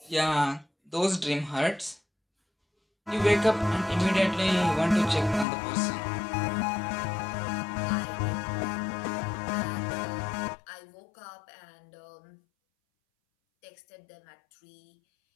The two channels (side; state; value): right; drops out; at 5.5 s